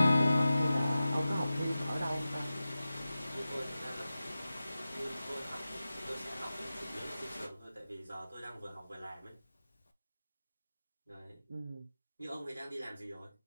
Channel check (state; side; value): inverted; both; correlation -0.94